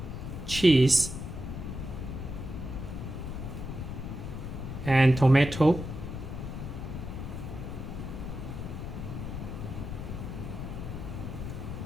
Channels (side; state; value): left; noise; rumble, 6 dB below the sound